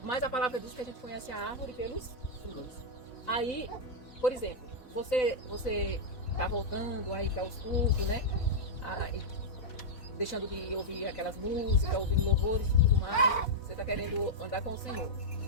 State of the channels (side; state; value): right; late; 4.1 ms